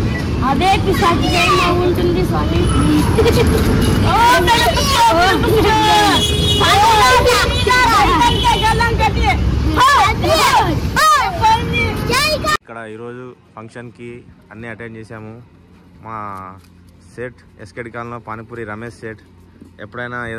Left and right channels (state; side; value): identical; both; correlation 1.00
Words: అదే పిశాచి దయ్యం ఉంటుంది స్వామి। ఇక్కడ ఈరోజు ఫంక్షన్కి అన్నీ అటెండ్ చేసాము। మా సేట్ ఎస్కేడి కాలనీలో పానీపూరి రమేష్ సేట్. ఎప్పుడైనా